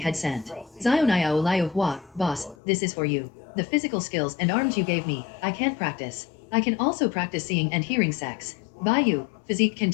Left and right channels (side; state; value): right; drops out; at 2.6 s